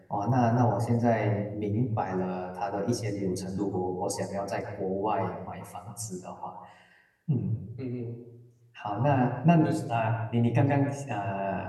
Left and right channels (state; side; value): identical; both; correlation 1.00